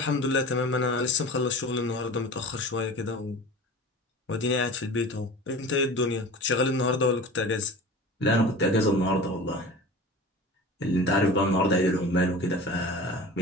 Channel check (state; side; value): normal; both; correlation 0.37